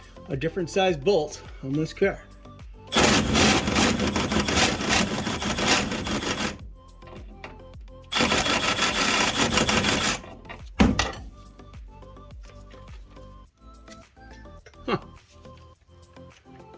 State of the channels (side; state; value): both; identical; correlation 1.00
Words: a different size bolt on this car. Huh.